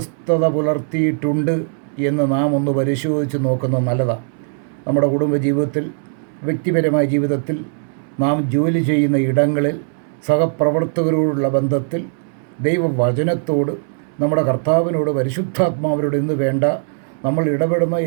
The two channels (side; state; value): left; silent; 66 dB below the other